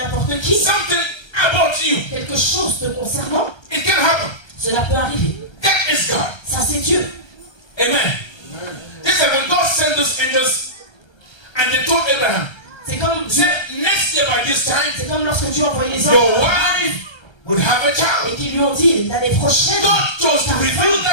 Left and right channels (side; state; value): right; late; 1.3 ms